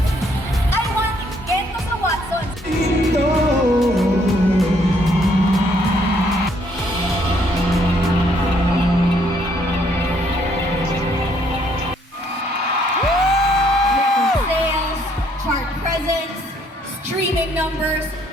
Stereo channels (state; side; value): normal; both; correlation 0.68